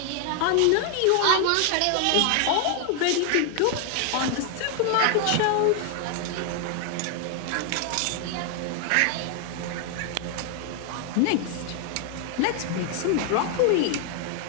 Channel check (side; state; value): both; different; correlation 0.00